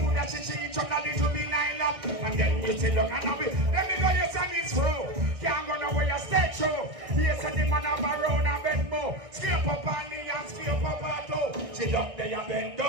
that she each other, this will be lined up. And then we say, look, and we, let me know your son is through. Can't go nowhere, you stay true. Yes, and the man have a round and bend more. Scrape up on the and scrape up her toe. She up there and bend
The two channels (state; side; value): late; left; 1.6 ms